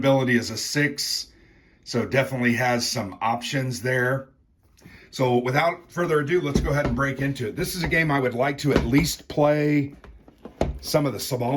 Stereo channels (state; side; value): identical; both; correlation 1.00